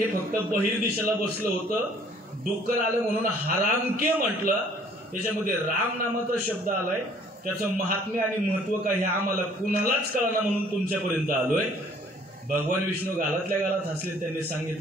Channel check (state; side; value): normal; both; correlation 0.57